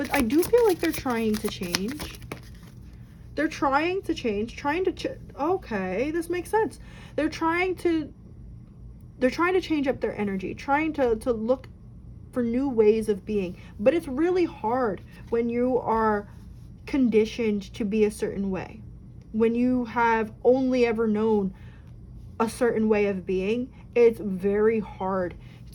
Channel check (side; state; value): both; identical; correlation 1.00